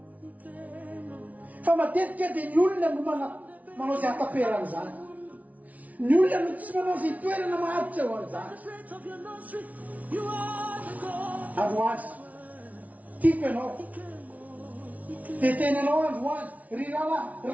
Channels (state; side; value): late; left; 0.071 ms